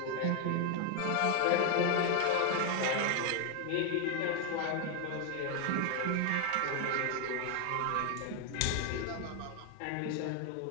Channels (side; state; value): both; different; correlation 0.01